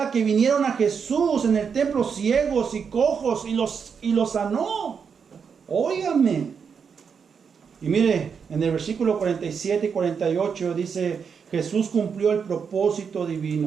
que vinieron a Jesús en el templo ciegos y cojos y los sanó. Óigame. Y mire, en el versículo 47 y 48 dice, Jesús cumplió el propósito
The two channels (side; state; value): left; quieter; 6.4 dB